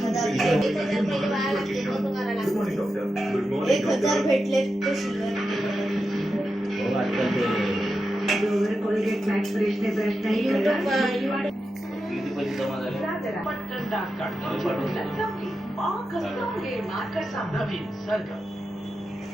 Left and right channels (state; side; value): normal; both; correlation 0.89